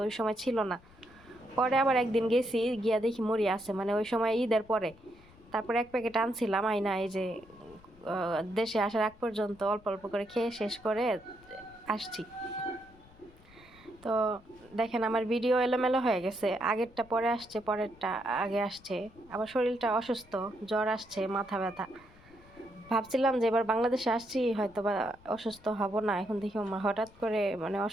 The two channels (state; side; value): noise; left; rumble, 25 dB below the sound